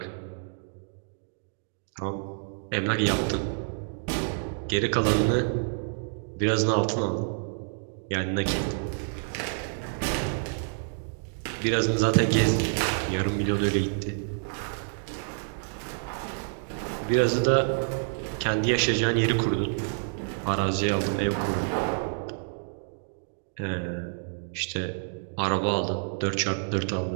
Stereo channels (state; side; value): silent; left; digital silence